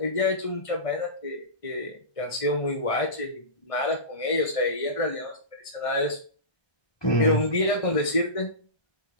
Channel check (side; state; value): right; late; 1.6 ms